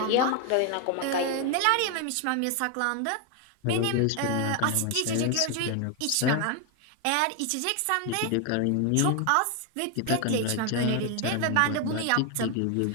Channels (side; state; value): both; different; correlation 0.01